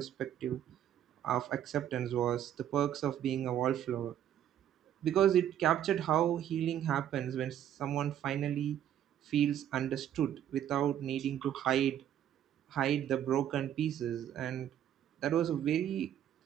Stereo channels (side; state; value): left; quieter; 10.6 dB